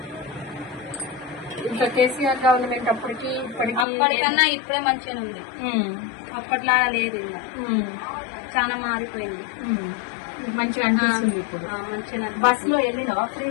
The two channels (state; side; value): drops out; right; at 3.9 s